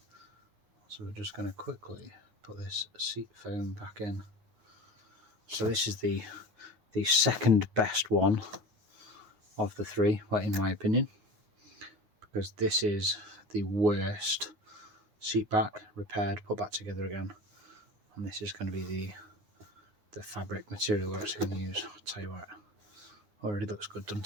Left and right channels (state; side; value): late; left; 9.3 ms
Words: so we're just going to quickly put this seat foam back in. So this is the second best one of the three, well, in my opinion, because this is the worst seat back, repaired, put back together again, and this is going to be the fabric material we're actually going to use. I'll tell you what, already looks good,